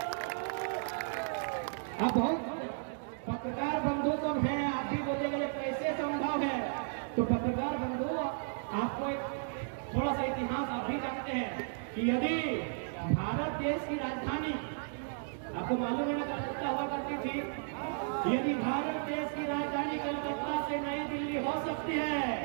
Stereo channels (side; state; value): left; silent; digital silence